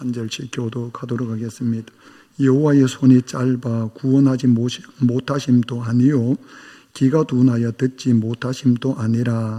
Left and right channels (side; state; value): both; identical; correlation 1.00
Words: 절씩 교독하도록 하겠습니다. 여호와의 손이 짧아 구원하지 못하심도 아니요 귀가 둔하여 듣지 못하심도